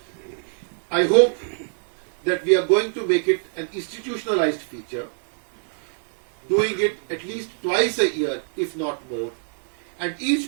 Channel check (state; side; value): silent; left; digital silence